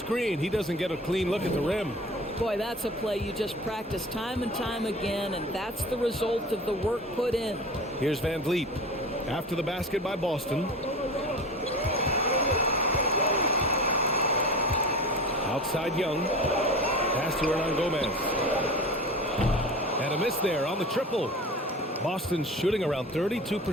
he doesn't get a clean look at the rim. Boy, that's a play you just practice time and time again, and that's the result of the work put in. Here's Van Vliet. After the basket by Boston. Outside Young. Pass to Hernan Gomez. And a miss there on the triple. Boston's shooting around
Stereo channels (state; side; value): normal; both; correlation 0.34